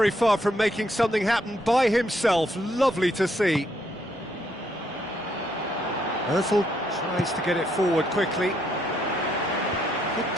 far from making something happen by himself. Lovely to see. Ozil tries to get it forward quickly. Good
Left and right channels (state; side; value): normal; both; correlation 0.73